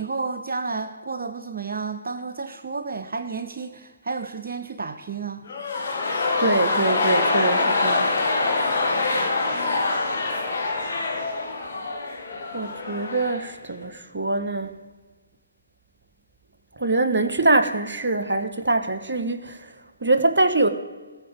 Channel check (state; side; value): inverted; both; correlation -0.67